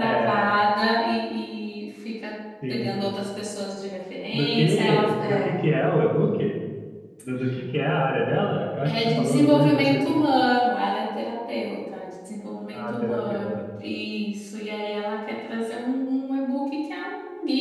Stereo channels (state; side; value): identical; both; correlation 1.00